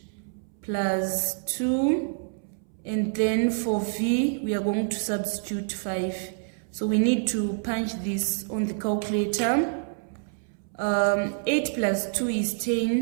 plus 2. And then for v, we are going to substitute 5. So we need to punch this on the calculator. 8 plus 2 is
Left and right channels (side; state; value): left; silent; 60 dB below the other